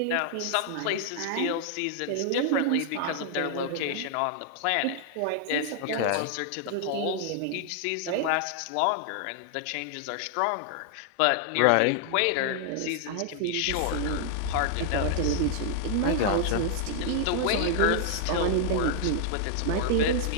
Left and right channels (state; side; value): different; both; correlation 0.00